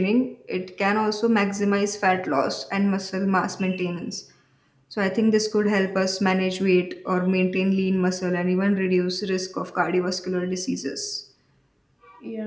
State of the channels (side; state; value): both; identical; correlation 1.00